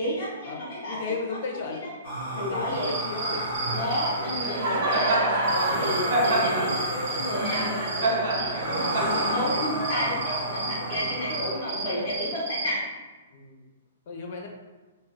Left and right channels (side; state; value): both; inverted; correlation -0.41